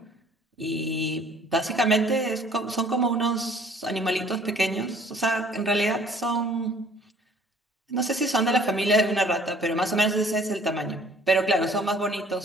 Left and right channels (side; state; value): both; normal; correlation 0.55